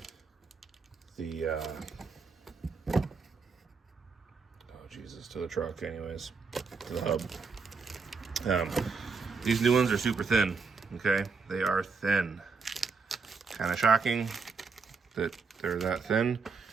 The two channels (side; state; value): left; quieter; 4.9 dB